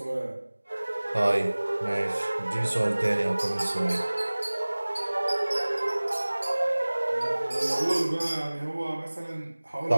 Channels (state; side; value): inverted; both; correlation -1.00